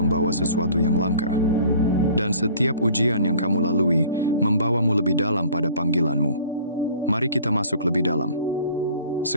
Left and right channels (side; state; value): both; inverted; correlation -0.50